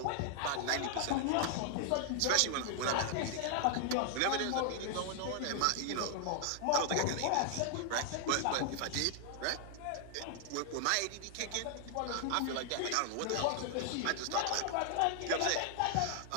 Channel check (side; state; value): both; different; correlation 0.00